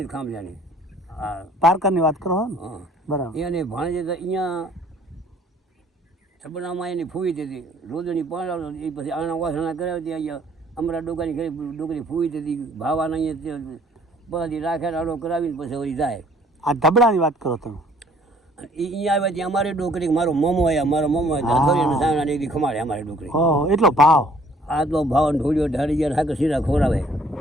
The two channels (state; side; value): normal; both; correlation 0.59